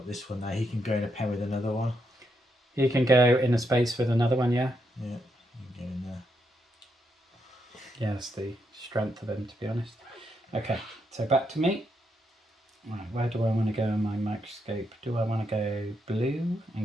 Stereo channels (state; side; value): normal; both; correlation 0.79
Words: this one there. He can go in a pen with another one. He can go in a space with another one, yeah? Yeah, he can go in there. Yeah, that's the strength of him, to be honest. Okay, so back to me. Right, where do I want to go in my microscope? Do I want to go blue and